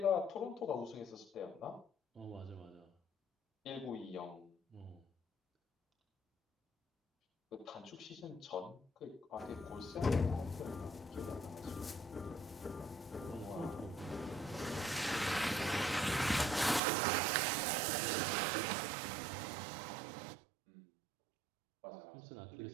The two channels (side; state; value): left; drops out; at 16.8 s